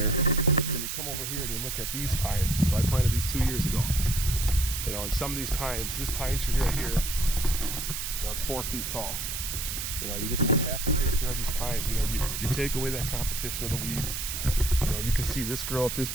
Then you come over here and you look at these pines. So I planted these 2 years ago. You know, and some of these pines, this pine tree right here, you know, it's 4 feet tall. You know, you have to take care of these pines. You know, you take away that competition of the weeds. You know, you can see this growth, this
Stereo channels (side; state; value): right; noise; hiss, 4 dB below the sound